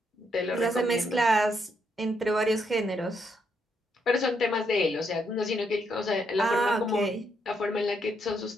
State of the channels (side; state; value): both; normal; correlation 0.77